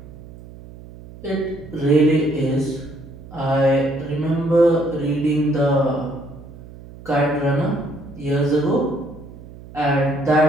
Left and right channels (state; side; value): noise; right; hum, 17 dB below the sound